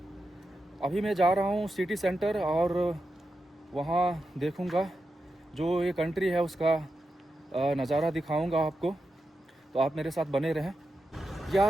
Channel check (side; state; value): both; normal; correlation 0.88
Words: अभी मैं जा रहा हूँ सिटी सेंटर और वहाँ देखूँगा, जो ये कंट्री है उसका नज़ारा दिखाऊँगा आपको। तो आप मेरे साथ बने रहें।